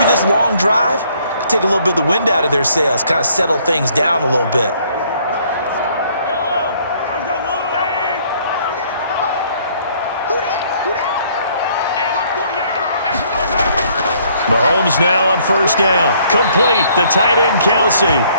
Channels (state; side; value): inverted; both; correlation -0.63